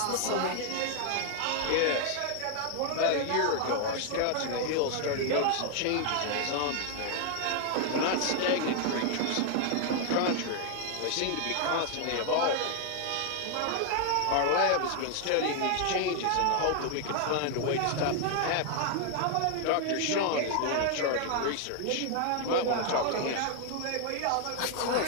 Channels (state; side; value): different; both; correlation 0.00